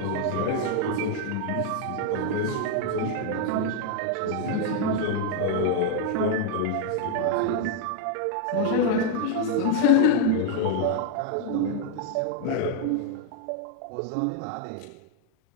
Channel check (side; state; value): both; different; correlation 0.00